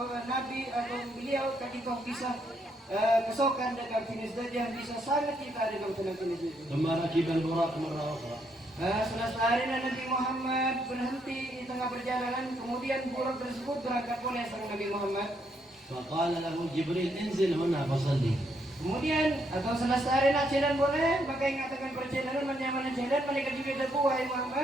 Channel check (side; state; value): both; normal; correlation 0.75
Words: Nabi atau beliau tadi kau bisa kesokan dengan abtinas daja bisa sangat kita dengan abtinas itu. ثم ركب البراق مرة أخرى. Setelah sehari Nabi Muhammad berhenti di tengah perjalanan, kemudian buruk tersebut berangkat oleh sang Nabi Muhammad. فقال له جبريل انزل هنا فصلي. Kemudian atau setelah sehari nak jalan boleh, maka ingatkan perjalanan menyaman jalan malaikat Jibril debu wahai